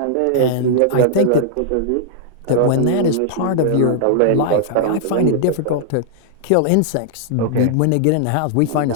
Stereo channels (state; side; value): different; both; correlation -0.01